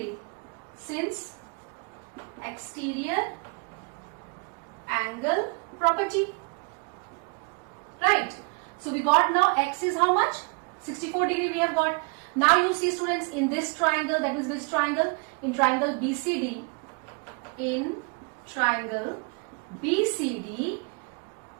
since exterior angle property. Right. So we got now X is how much? 64 degree we have got. Now you see students, in this triangle, that means which triangle? In triangle BCD. In triangle BCD,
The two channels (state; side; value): quieter; left; 33.2 dB